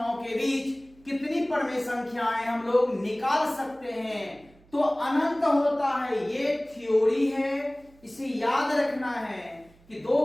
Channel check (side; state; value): right; noise; hum, 28 dB below the sound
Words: के बीच कितनी परमेय संख्याएं हम लोग निकाल सकते हैं। तो अनंत होता है, ये थ्योरी है, इसे याद रखना है कि दो